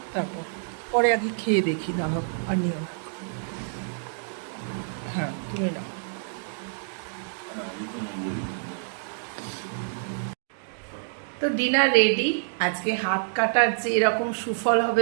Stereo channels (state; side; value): silent; left; digital silence